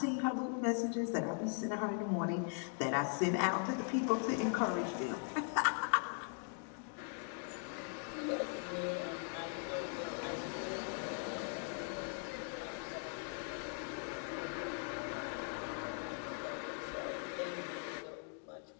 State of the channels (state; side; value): silent; right; 51 dB below the other